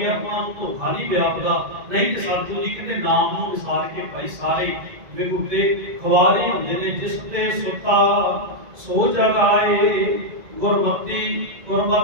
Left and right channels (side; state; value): left; late; 2.0 ms